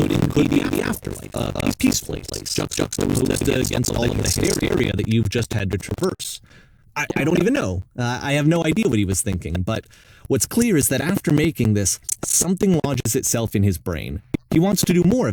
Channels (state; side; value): identical; both; correlation 1.00